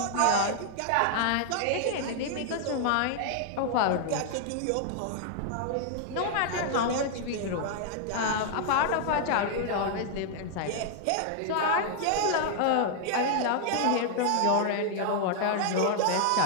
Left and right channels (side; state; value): both; different; correlation 0.00